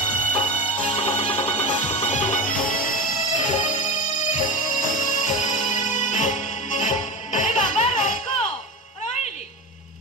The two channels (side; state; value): both; normal; correlation 0.25